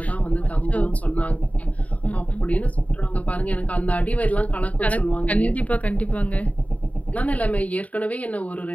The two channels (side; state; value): right; late; 0.069 ms